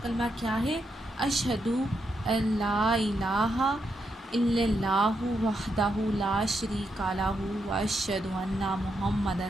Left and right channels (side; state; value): both; normal; correlation 0.81